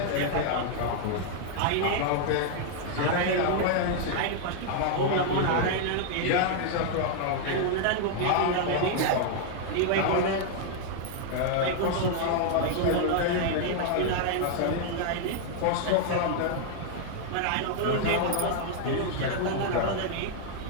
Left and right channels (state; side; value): different; both; correlation 0.00